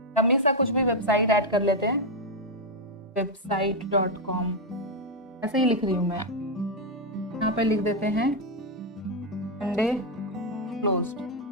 हमेशा कुछ भी वेबसाइट ऐड कर लेते हैं, website.com ऐसे ही लिख रही हूँ मैं। यहाँ पे लिख देते हैं संडे क्लोज्ड।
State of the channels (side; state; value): both; normal; correlation 0.02